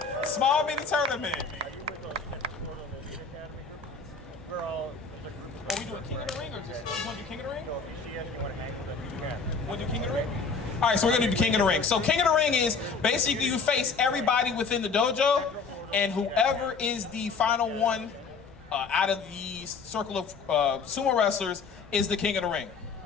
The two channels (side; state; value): right; quieter; 4.9 dB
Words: Small mini tournament. Are you with the Elite Academy group? We're all, there's a group of Are we doing King of the Ring or just you want to do King of the Ring? So if you see us, you want to hang with us, you We'll do King of the Ring? All right, so we're gonna do King of the Ring. So King of the Ring is basically you face everybody within the dojo, and whoever is the final one out of the circle of sumo wrestlers is the King of the Ring.